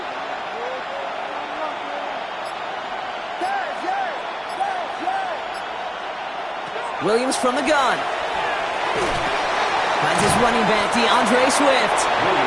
Williams from the gun. Finds his running back, DeAndre Swift.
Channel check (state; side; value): identical; both; correlation 1.00